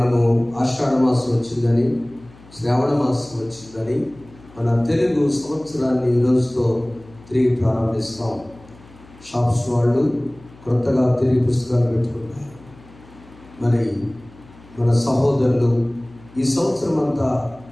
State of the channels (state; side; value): noise; left; hum, 24 dB below the sound